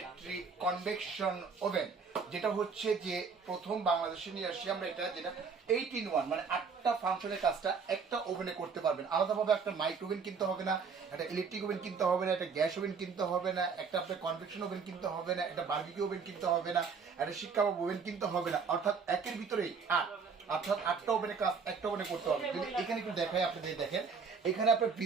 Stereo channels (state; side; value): quieter; left; 5.4 dB